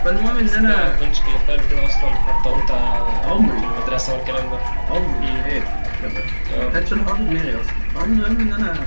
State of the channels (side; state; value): both; inverted; correlation -1.00